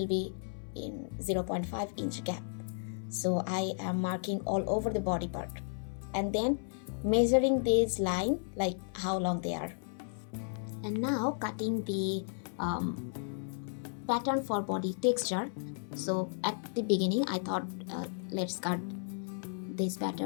be in 0.5 inch gap. So I am marking all over the body part and then measuring this line like how long they are. And now cutting the pattern for body texture. So at the beginning I thought let's cut this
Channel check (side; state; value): right; silent; 55 dB below the other